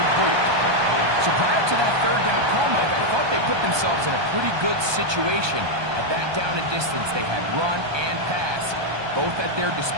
So prior to that 3rd down call, Mike, I thought they put themselves in a pretty good situation. At that down and distance, they had run and pass, both at their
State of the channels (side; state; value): left; late; 1.2 ms